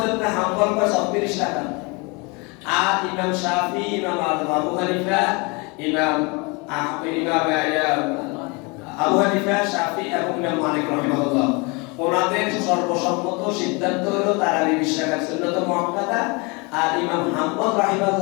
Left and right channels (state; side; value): quieter; right; 29.0 dB